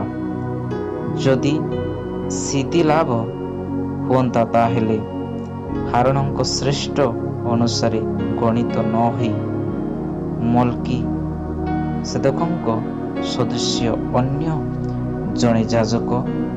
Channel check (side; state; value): both; identical; correlation 1.00